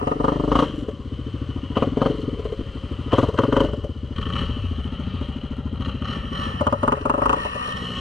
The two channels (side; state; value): right; quieter; 3.0 dB